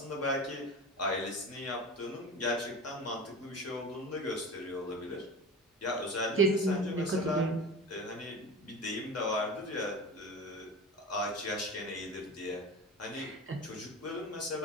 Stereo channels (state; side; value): normal; both; correlation 0.31